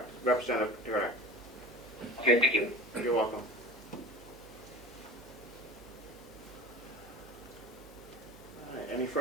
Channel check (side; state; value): right; noise; hum, 21 dB below the sound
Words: Representative Kennard. Okay, thank you. You're welcome. All right, any